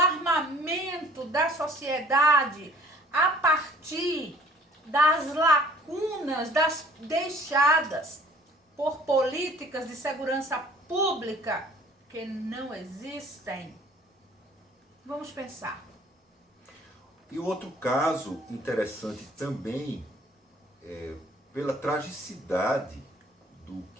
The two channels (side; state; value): both; normal; correlation 0.53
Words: da sociedade a partir das lacunas deixadas por políticas de segurança pública que não existem. Vamos pensar. E outro caso interessante também, pela tragicidade do